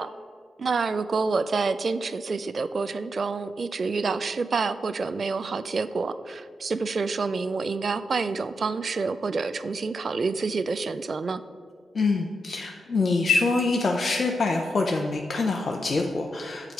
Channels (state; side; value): normal; both; correlation 0.84